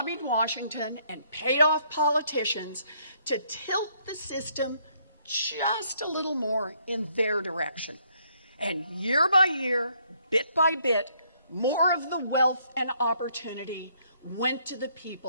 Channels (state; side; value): inverted; both; correlation -0.69